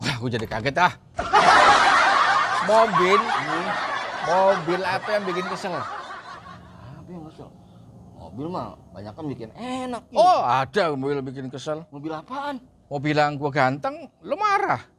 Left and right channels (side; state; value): both; identical; correlation 1.00